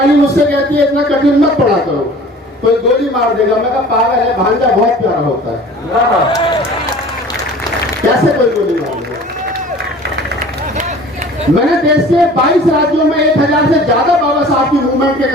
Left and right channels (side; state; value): both; normal; correlation 0.45